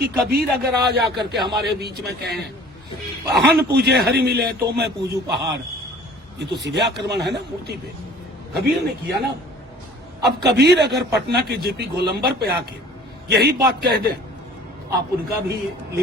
कबीर अगर आज आकर के हमारे बीच में कहें हन पूजे हरि मिले तो मैं पूजू पहाड़, ये तो सीधे आक्रमण है ना मूर्ति पे। कबीर ने किया ना। अब कबीर अगर पटना के जेपी गोलंबर पे आके यही बात कह दें, आप उनका भी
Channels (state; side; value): normal; both; correlation 0.49